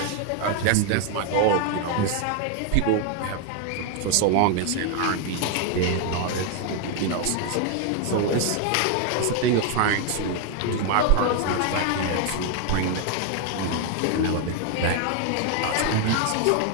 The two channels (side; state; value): both; different; correlation 0.00